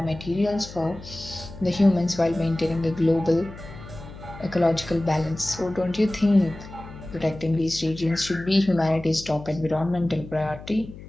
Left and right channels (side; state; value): left; noise; hum, 15 dB below the sound